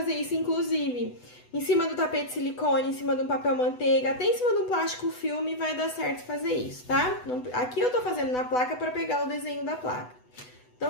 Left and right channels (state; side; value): late; right; 8.1 ms